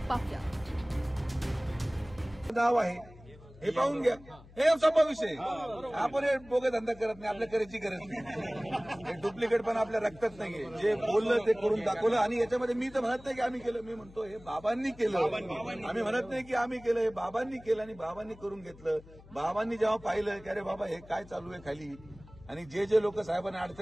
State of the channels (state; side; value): noise; left; hum, 21 dB below the sound